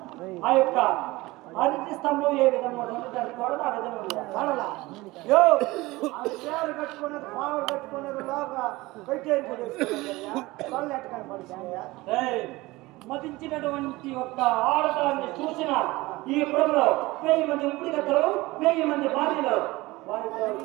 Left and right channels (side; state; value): left; quieter; 20.5 dB